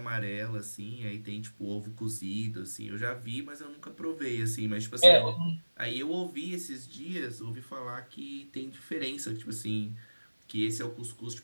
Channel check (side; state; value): both; inverted; correlation -1.00